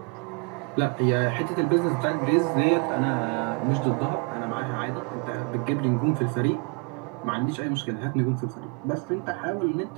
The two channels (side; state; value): left; quieter; 32.8 dB